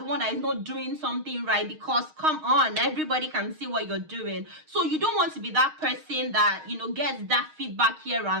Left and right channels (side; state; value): left; late; 6.4 ms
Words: one that is not doing something right, because come on, everybody can see what you're doing. So you don't want to be that person that gets that feedback here